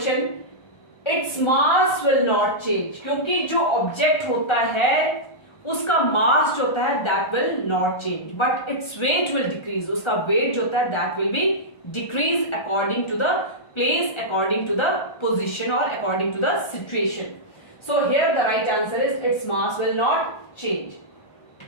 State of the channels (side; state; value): right; late; 1.3 ms